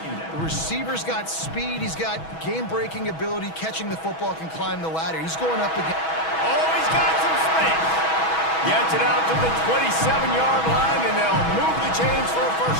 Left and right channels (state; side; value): late; right; 6.2 ms